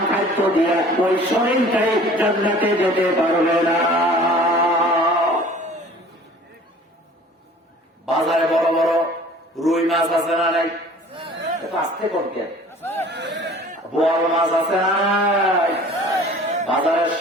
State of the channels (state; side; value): normal; both; correlation 0.48